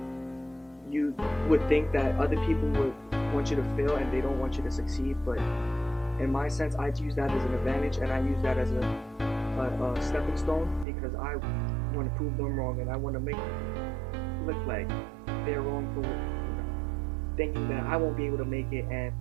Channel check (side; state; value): left; drops out; at 10.9 s